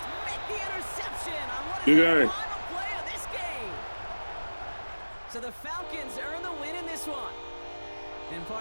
make the interception on what is the final play of this game. So the Falcons earn the win in this one. And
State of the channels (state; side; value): inverted; both; correlation -1.00